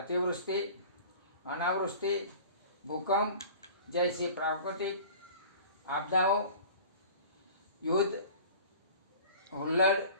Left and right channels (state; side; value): inverted; both; correlation -0.42